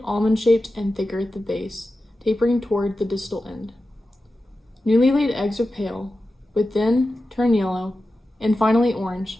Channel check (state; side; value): normal; both; correlation 0.93